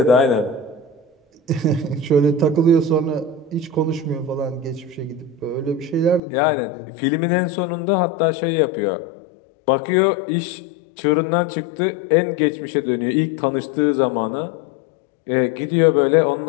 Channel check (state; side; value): drops out; right; at 6.2 s